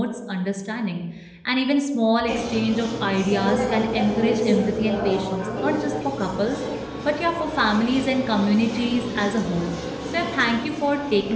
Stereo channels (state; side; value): identical; both; correlation 1.00